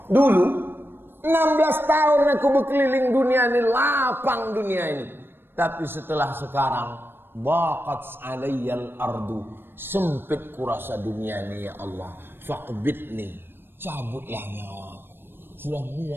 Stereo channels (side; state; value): left; late; 0.10 ms